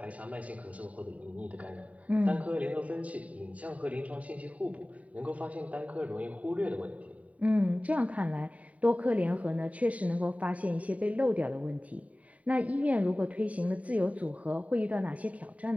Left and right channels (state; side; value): late; left; 0.068 ms